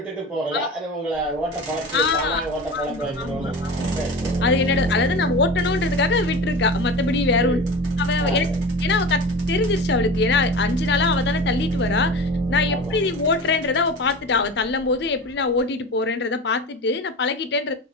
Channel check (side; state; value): both; normal; correlation 0.32